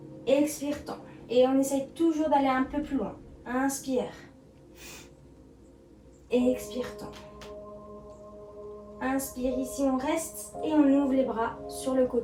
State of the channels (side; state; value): both; identical; correlation 1.00